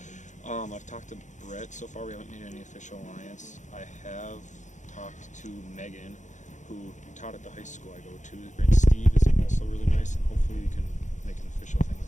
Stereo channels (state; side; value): late; right; 0.35 ms